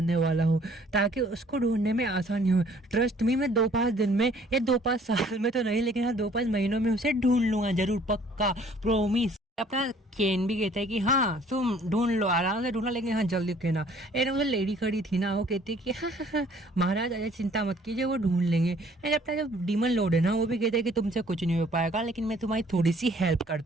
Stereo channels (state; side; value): normal; both; correlation 0.57